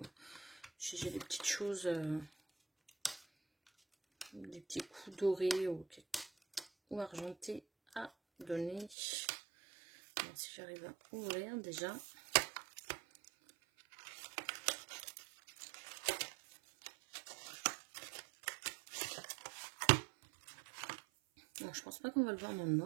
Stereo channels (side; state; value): left; drops out; at 9.0 s